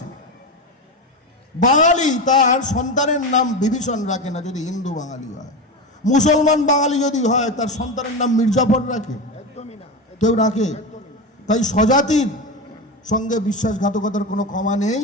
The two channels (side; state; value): both; normal; correlation 0.19